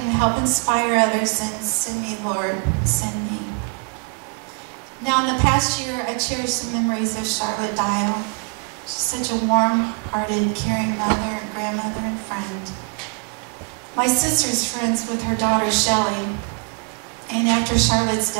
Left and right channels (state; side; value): quieter; left; 35.3 dB